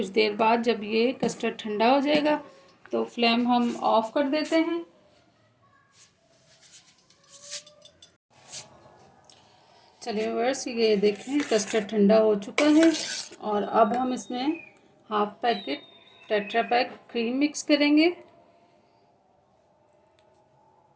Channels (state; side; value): identical; both; correlation 1.00